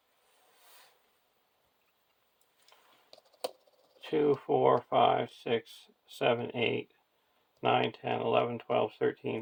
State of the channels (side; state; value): both; identical; correlation 1.00